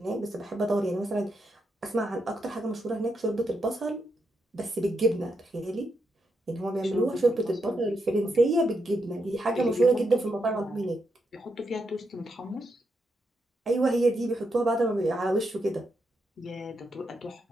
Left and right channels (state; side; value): normal; both; correlation 0.82